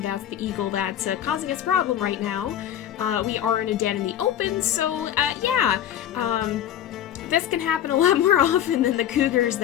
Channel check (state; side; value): quieter; right; 10.7 dB